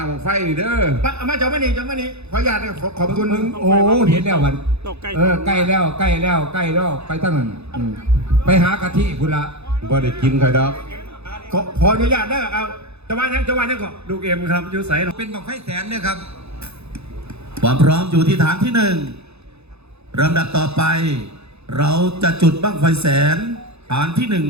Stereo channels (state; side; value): late; left; 0.80 ms